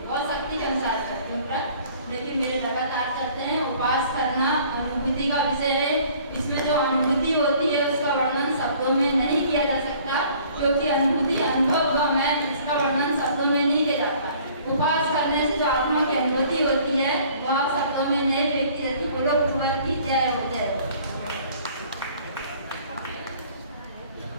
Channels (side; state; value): both; inverted; correlation -0.55